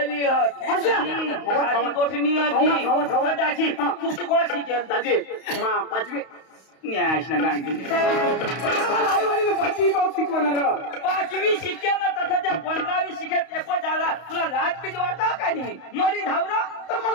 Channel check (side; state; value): right; late; 32 ms